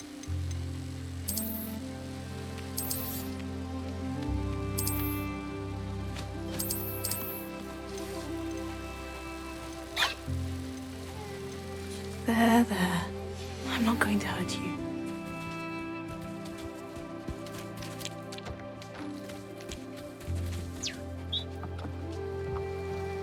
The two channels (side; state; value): both; identical; correlation 1.00